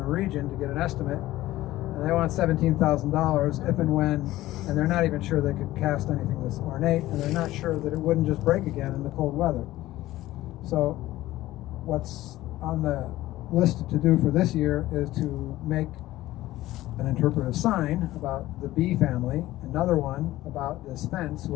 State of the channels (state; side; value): quieter; right; 16.1 dB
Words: region to get an estimate. And they want $17,000 if and when, and they're not even sure they could cast anything this ornate, and they're not sure that it wouldn't just break again in the cold weather. So what's on the list to do for this year is to make an interpretive sign about the bee family, another one about this fence